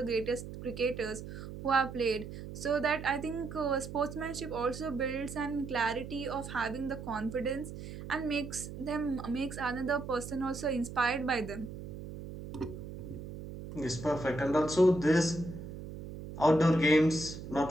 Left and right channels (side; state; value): right; noise; hum, 10 dB below the sound